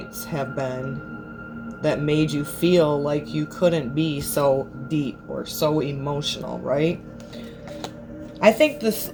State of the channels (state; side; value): identical; both; correlation 1.00